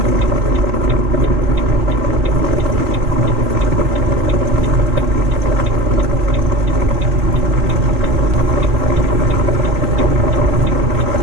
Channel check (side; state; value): left; late; 3.9 ms